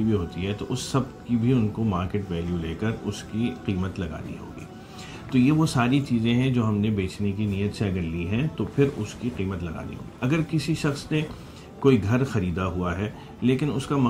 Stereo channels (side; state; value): both; identical; correlation 1.00